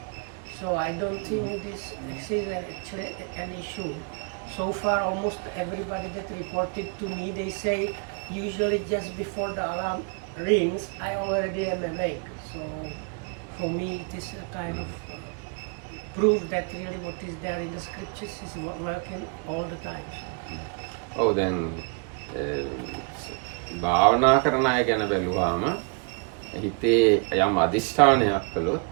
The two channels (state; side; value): quieter; left; 37.3 dB